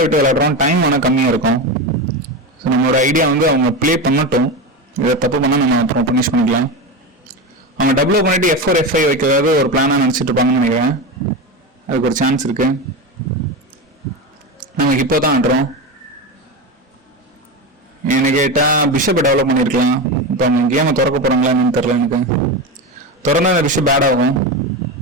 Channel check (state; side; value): normal; both; correlation 0.20